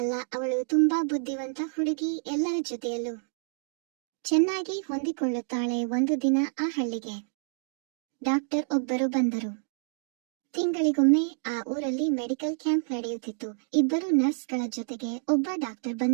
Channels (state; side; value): silent; left; digital silence